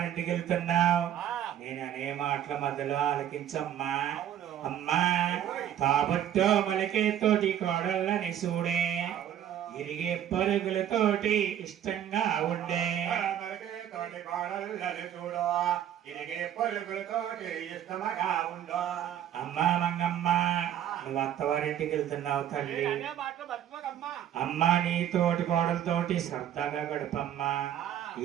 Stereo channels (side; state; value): left; quieter; 10.6 dB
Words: వెళ్తున్నావు. నేను అనే మాటల మధ్యలో ఆలకించమ్మా. అమ్మా తాబట్టో మలికే తోటి కోడళ్ళని చూడే, ఇరిగే పరుగులతోటి ఇష్టంగా ఉండే. అమ్మా మంగమ్మ నువ్వు అత్తవారింటికి వెళ్తున్నావు తల్లి. అమ్మా నీ తోటి కోడలతోటి సరదాగా గడపమ్మా.